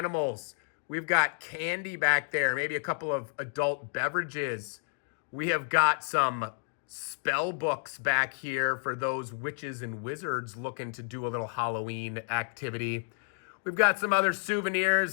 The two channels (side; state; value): right; silent; 57 dB below the other